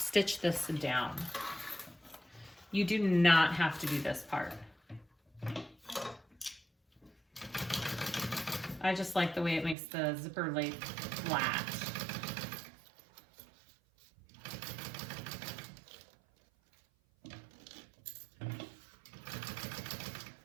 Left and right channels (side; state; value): left; drops out; at 9.8 s